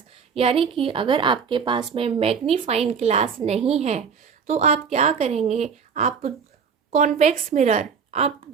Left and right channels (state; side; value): quieter; left; 6.3 dB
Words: यानी कि अगर आपके पास में मैग्नीफाइंग ग्लास नहीं है तो आप क्या करेंगे, आप कॉन्वेक्स मिरर, आप